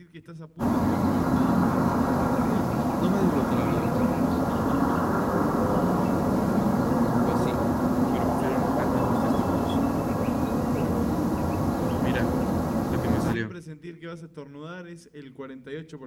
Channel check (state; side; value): identical; both; correlation 1.00